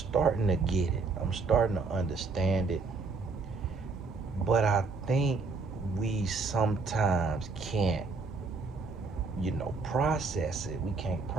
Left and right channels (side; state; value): left; quieter; 4.1 dB